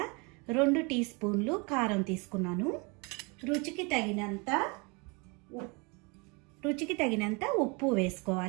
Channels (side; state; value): left; quieter; 29.9 dB